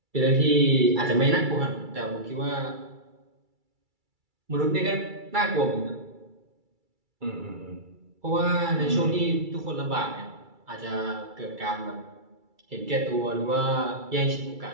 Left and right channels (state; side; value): late; left; 2.3 ms